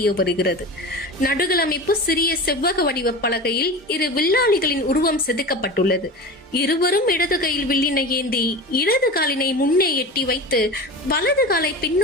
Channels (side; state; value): both; normal; correlation 0.31